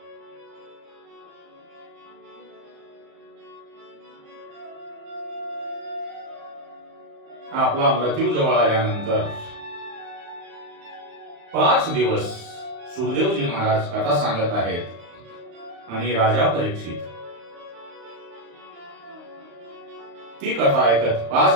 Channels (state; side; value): late; left; 35 ms